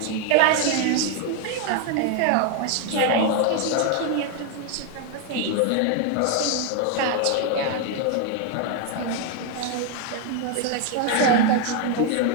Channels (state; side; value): different; both; correlation 0.01